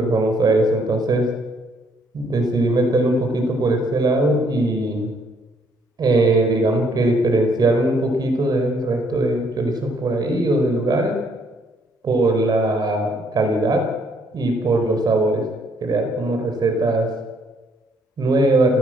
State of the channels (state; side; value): normal; both; correlation 0.68